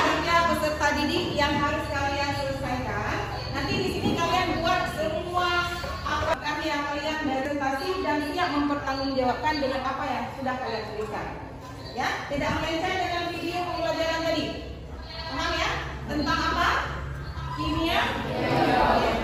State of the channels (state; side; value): identical; both; correlation 1.00